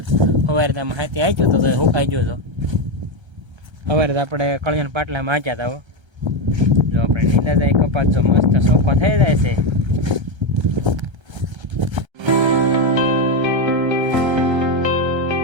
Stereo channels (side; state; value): left; late; 1.3 ms